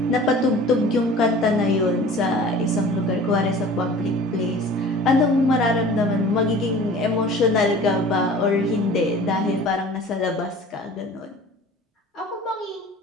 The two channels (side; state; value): both; normal; correlation 0.43